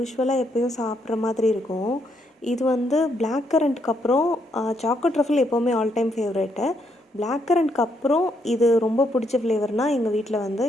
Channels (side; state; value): both; normal; correlation 0.75